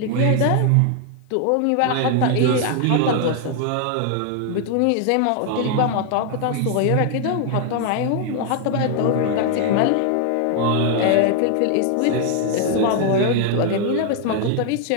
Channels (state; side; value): different; both; correlation 0.00